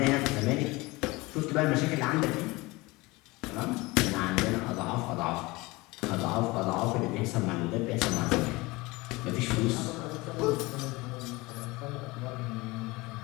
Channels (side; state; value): right; quieter; 22.7 dB